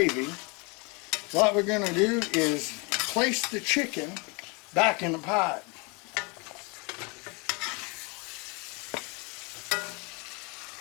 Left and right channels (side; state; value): right; quieter; 30.4 dB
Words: what we're going to do is place the chicken back in the pot.